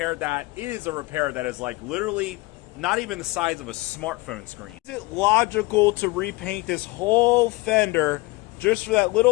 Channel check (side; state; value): right; quieter; 22.9 dB